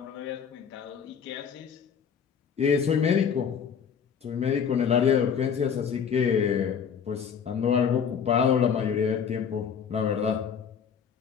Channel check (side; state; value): right; quieter; 7.2 dB